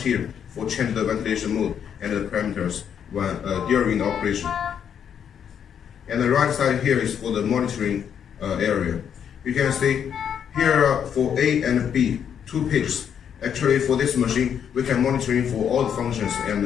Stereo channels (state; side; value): quieter; right; 8.3 dB